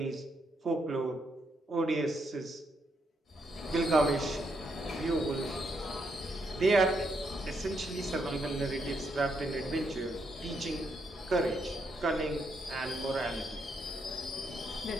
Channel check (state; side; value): normal; both; correlation 0.78